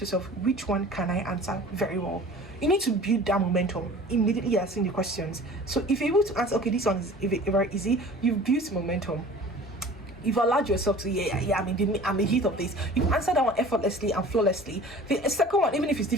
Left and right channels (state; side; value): normal; both; correlation 0.44